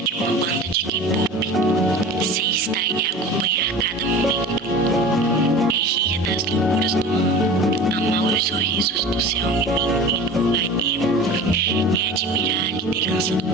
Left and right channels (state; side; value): normal; both; correlation 0.36